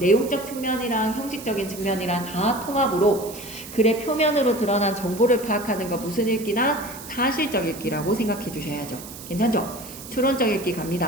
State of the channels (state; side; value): noise; right; hiss, 14 dB below the sound